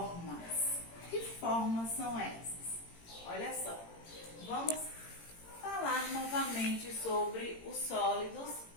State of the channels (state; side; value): late; right; 18 ms